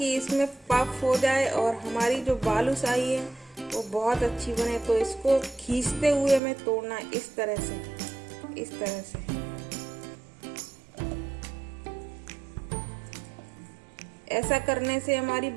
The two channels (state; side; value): drops out; left; at 6.4 s